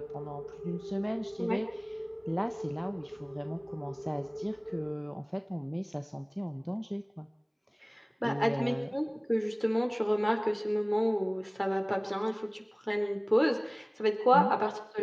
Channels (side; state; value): both; identical; correlation 1.00